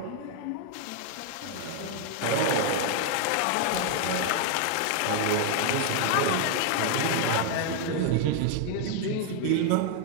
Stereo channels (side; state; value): both; different; correlation 0.00